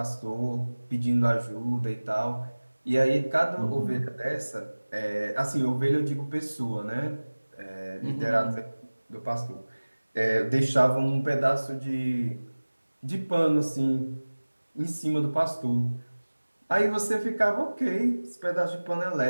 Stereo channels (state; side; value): inverted; both; correlation -1.00